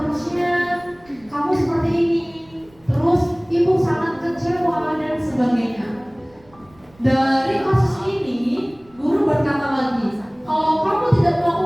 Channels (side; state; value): right; noise; rumble, 29 dB below the sound